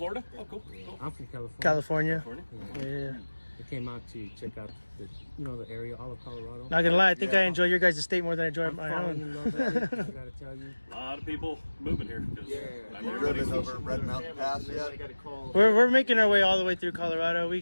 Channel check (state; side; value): inverted; both; correlation -1.00